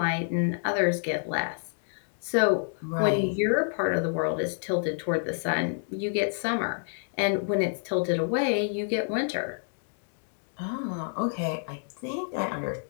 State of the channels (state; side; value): silent; right; digital silence